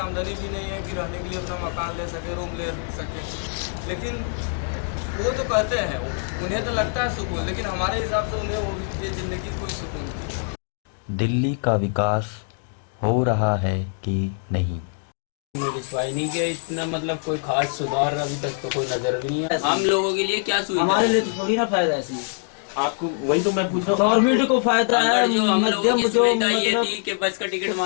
आमदनी भी नहीं है कि रहने के लिए अपना मकान ले सके, रूम ले सके। लेकिन वो तो कहते हैं, उन्हें तो लगता है सुकून, लेकिन हमारे हिसाब से उन्हें वो ये ज़िंदगी कोई सुकून नहीं। दिल्ली का विकास हो रहा है कि नहीं? विश्वास नहीं किया इतना, मतलब कोई खास सुधार अभी तक तो कोई नजर भी नहीं है। हम लोगों के लिए क्या सुविधा? हमारे लिए तो थोड़ी ना फायदा है इसमें। आपको वही तो मैं पूछ रहा हूँ, गवर्नमेंट को फायदा है, जो हम लोगों की मध्यम जो सुविधा ये मतलब थी कि बस का टिकट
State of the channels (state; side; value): silent; right; 61 dB below the other